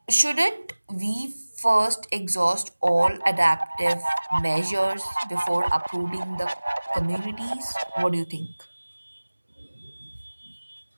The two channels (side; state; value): both; inverted; correlation -1.00